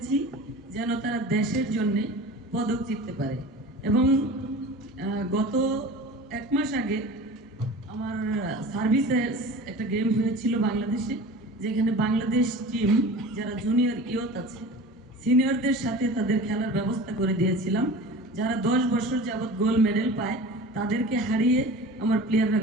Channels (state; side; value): normal; both; correlation 0.37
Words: যেন তারা দেশের জন্য পদক জিততে পারে। এবং গত 1 মাস আগে আমার সার্ভিসে একটা গেম হয়েছিল বাংলাদেশে, যেখানে বাংলাদেশ টিম যারা জুনিয়র ইয়ত আছে সিনিয়রদের সাথে তাদের খেলার ব্যবস্থা করে দিয়েছিলাম। যারা 10 বছর যাবৎ গোল্ড মেডেল পায় তাদেরকে হারিয়ে আমার প্লেয়াররা